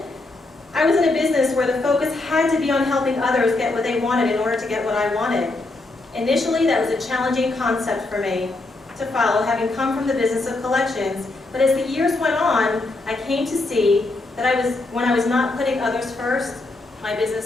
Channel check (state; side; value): quieter; right; 3.1 dB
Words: I was in a business where the focus had to be on helping others get what they wanted in order to get what I wanted. Initially, that was a challenging concept for me to follow, having come from the business of collections, but as the years went on, I came to see that when I was not putting others first, my